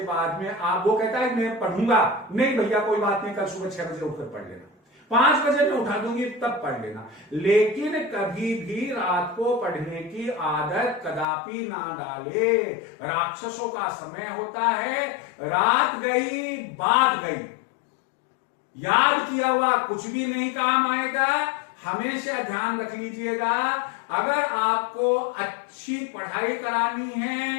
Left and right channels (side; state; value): right; drops out; at 11.2 s